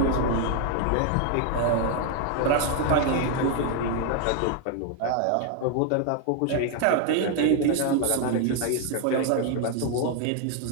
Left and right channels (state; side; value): different; both; correlation 0.00